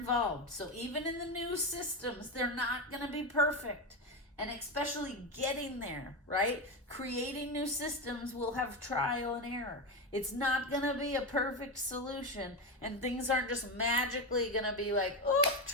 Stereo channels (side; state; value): both; normal; correlation 0.14